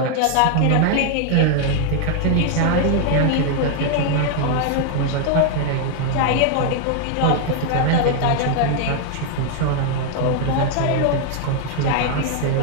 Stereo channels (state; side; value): different; both; correlation 0.00